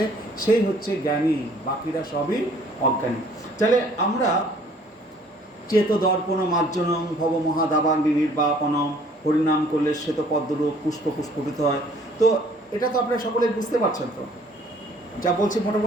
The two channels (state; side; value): normal; both; correlation 0.57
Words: সেই হচ্ছে জ্ঞানী, বাকিরা সবই অজ্ঞানী। তাহলে আমরা চেত দর্পণ মার্জনম ভব মহাদাবাগ্নি নির্বাপনম, হরিনাম করলে শ্বেত পদ্মরূপ পুষ্প পুষ্পিত হয়। তো এটা তো আপনারা সকলে বুঝতে পারছেন, তো যা বলছি